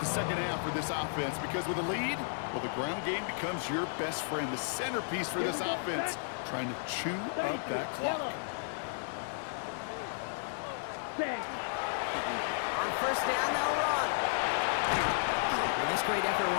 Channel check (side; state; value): right; silent; digital silence